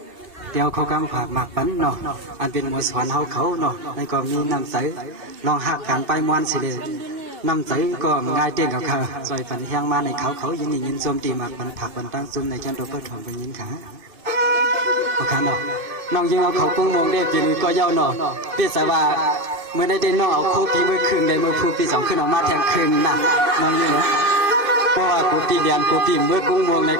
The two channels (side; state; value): left; late; 2.5 ms